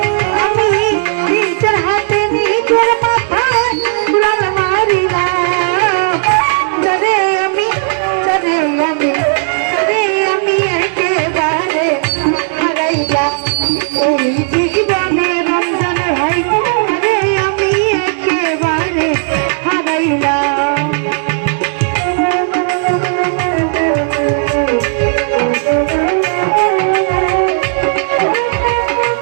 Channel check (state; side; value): silent; left; digital silence